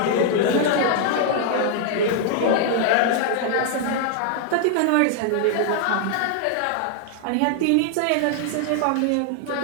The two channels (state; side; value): different; both; correlation -0.01